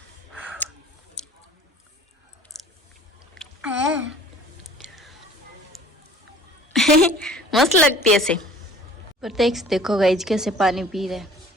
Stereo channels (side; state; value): both; normal; correlation 0.48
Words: मस्त लगती है ऐसे। प्रत्यक्ष देखो गाइस कैसे पानी पी रहे हैं।